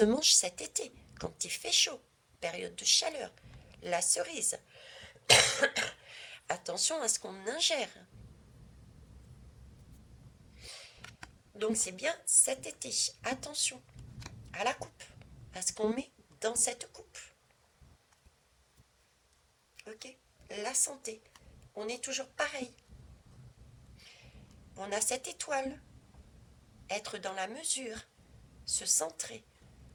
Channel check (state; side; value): identical; both; correlation 1.00